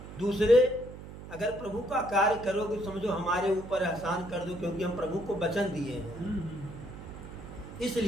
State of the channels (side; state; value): right; noise; hum, 13 dB below the sound